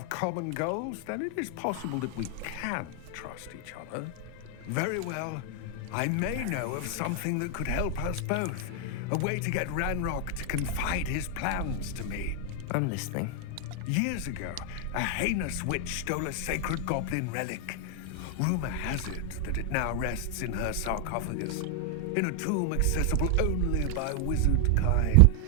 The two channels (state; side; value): different; both; correlation 0.00